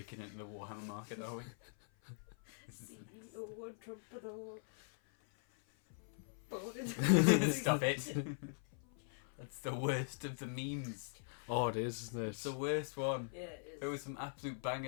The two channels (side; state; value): right; silent; 50 dB below the other